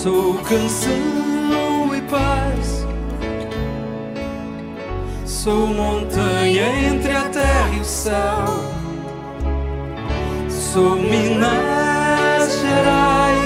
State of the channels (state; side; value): identical; both; correlation 1.00